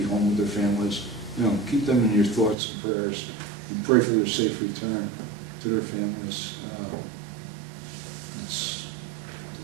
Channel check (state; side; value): drops out; left; at 2.6 s